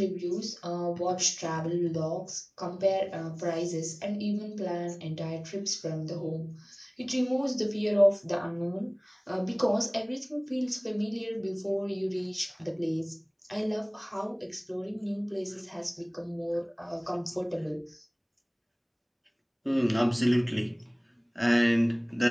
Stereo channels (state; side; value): identical; both; correlation 1.00